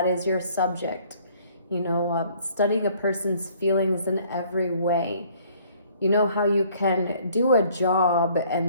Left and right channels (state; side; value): inverted; both; correlation -0.59